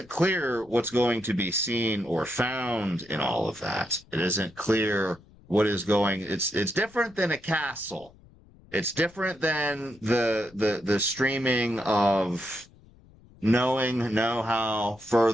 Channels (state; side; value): noise; left; rumble, 26 dB below the sound